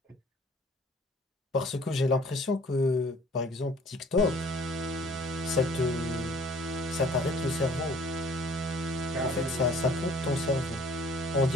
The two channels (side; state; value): both; normal; correlation 0.54